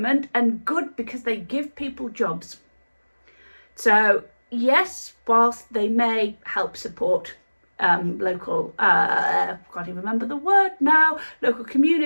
and good because they give people jobs. So yes, whilst they may help support local, can't even remember the word now, local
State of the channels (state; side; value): inverted; both; correlation -1.00